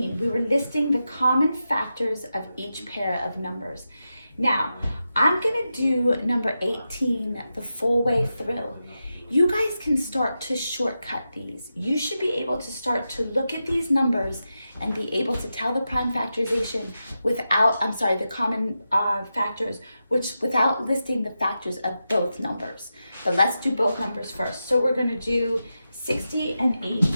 We were listing the common factors of each pair of numbers. Now, I'm going to do number 18 the full way through. You guys can start to shortcut these. You should be able to start to look at these numbers and be able to tell the prime factorization without, the common factors, without listing the factors of both numbers. But let's do both numbers first. So we're going to do 60 and 80.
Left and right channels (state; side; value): inverted; both; correlation -0.90